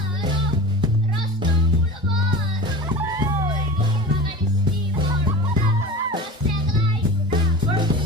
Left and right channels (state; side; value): normal; both; correlation 0.33